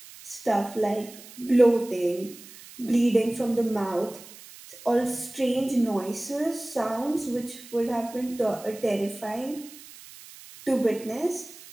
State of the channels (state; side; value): noise; right; hiss, 18 dB below the sound